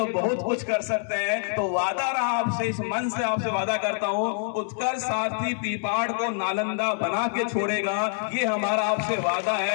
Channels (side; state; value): right; silent; digital silence